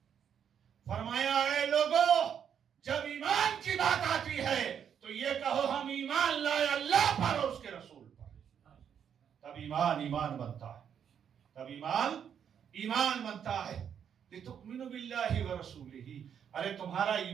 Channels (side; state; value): left; quieter; 8.2 dB